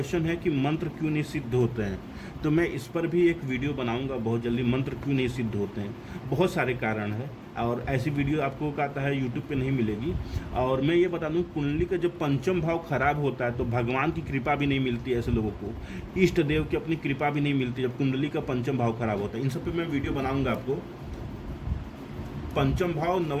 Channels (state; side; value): identical; both; correlation 1.00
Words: है कि मंत्र क्यों नहीं सिद्ध होते हैं, तो मैं इस पर भी एक वीडियो बनाऊंगा बहुत जल्दी, मंत्र क्यों नहीं सिद्ध होते हैं। बहुत सारे कारण हैं, और ऐसी वीडियो आपको कहता है यूट्यूब पे नहीं मिलेगी। और मैं ये बता दूं, कुंडली का जब पंचम भाव खराब होता है तो भगवान की कृपा भी नहीं मिलती है ऐसे लोगों को, इष्ट देव की अपनी कृपा भी नहीं मिलती जब कुंडली का पंचम भाव खराब होता है। इन सब पे मैं वीडियो बनाऊंगा आपको। पंचम भाव